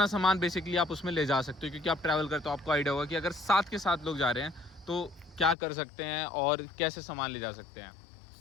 सामान बेसिकली आप उसमें ले जा सकते हो, क्योंकि आप ट्रैवल करते हो आपको आइडिया होगा कि अगर 7 के 7 लोग जा रहे हैं तो क्या कर सकते हैं और कैसे सामान ले जा सकते हैं।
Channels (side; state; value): right; drops out; at 5.6 s